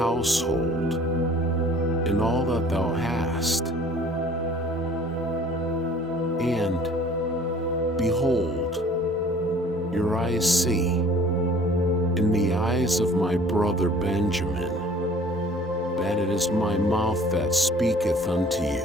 and all that thou hast. And, behold, your eyes see, in the eyes of my brother Benjamin, that it is my mouth that speaketh unto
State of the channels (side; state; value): both; normal; correlation 0.51